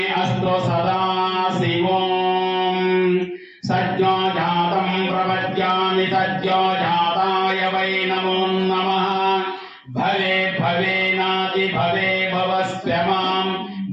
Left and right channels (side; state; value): both; identical; correlation 1.00